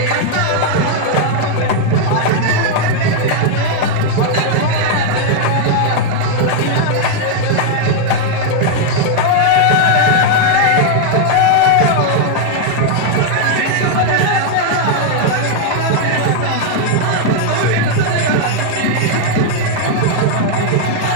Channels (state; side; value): different; both; correlation 0.00